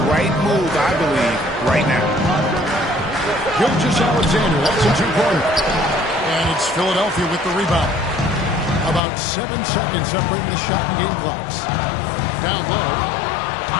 right move, I believe, right now. Alexander, that's a 2-pointer. And it's Philadelphia with the rebound. About 7 seconds separating the shot and game clocks. Down low.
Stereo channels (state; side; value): drops out; right; at 9.0 s